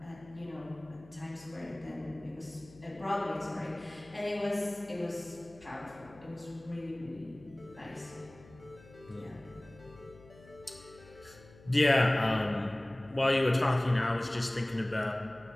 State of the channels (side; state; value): left; noise; hum, 22 dB below the sound